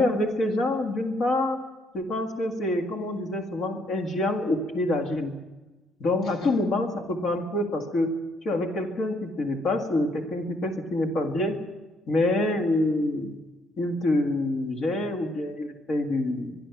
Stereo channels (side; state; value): both; normal; correlation 0.70